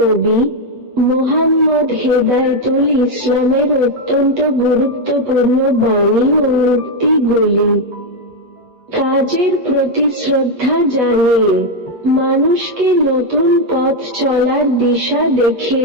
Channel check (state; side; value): late; left; 8.2 ms